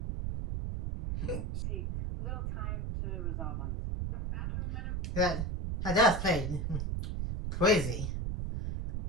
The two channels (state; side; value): noise; right; rumble, 2 dB below the sound